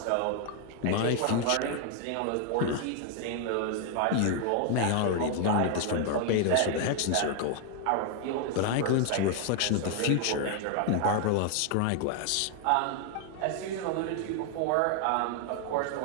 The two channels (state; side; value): different; both; correlation 0.00